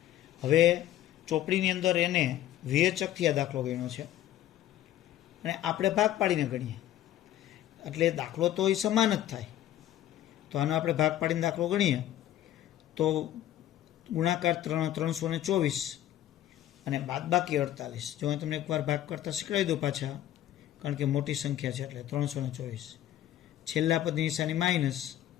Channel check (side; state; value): right; quieter; 12.6 dB